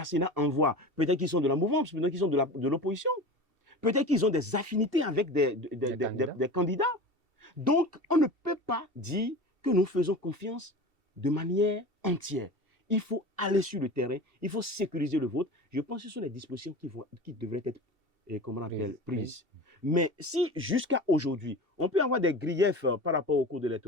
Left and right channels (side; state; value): left; late; 2.7 ms